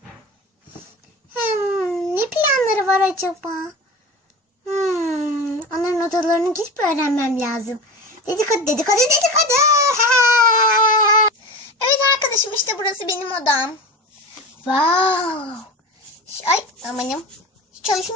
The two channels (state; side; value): normal; both; correlation 0.30